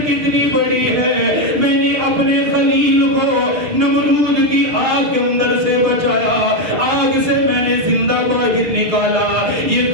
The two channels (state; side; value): late; left; 6.4 ms